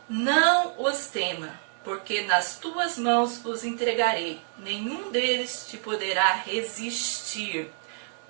Não os tema, porque nas tuas mãos os entregarei. Nenhum deles te poderá resistir.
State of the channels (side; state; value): left; silent; digital silence